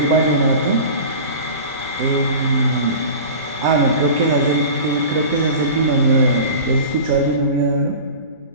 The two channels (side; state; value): both; inverted; correlation -0.36